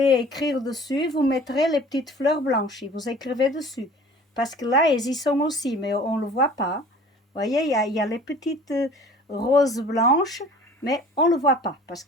écrire dessus, vous mettrez les petites fleurs blanches et vous écrivez dessus. Parce que là, elles y sont aussi, mais on ne le voit pas. Vous voyez, il y a les petites roses blanches, mais on ne le voit pas parce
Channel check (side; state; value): both; normal; correlation 0.46